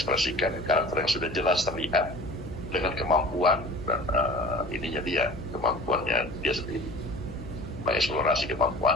karakter yang sudah jelas terlihat dengan kemampuan dan kemampuannya dia sendiri, mengeksplorasi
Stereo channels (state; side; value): noise; left; hum, 14 dB below the sound